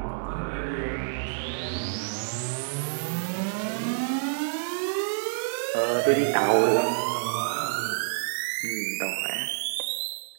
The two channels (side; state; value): left; silent; digital silence